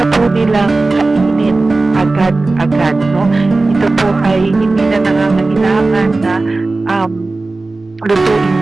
po nilang kainin agad-agad, no? Ito po ay hindi na nangangailangan na lutuin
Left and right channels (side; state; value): left; quieter; 3.3 dB